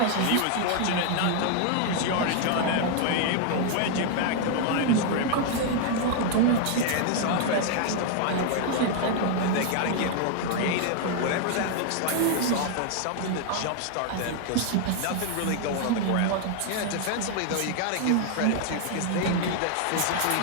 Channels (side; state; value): both; different; correlation 0.00